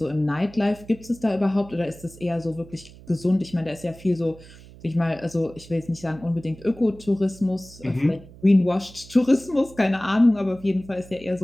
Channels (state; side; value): noise; right; hum, 20 dB below the sound